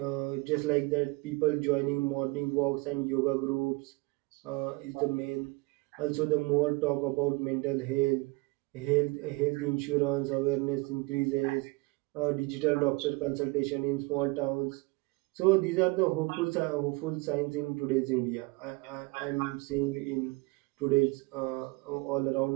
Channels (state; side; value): quieter; left; 25.0 dB